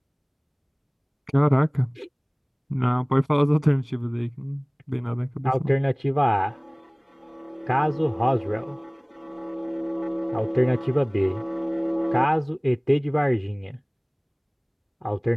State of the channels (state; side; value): identical; both; correlation 1.00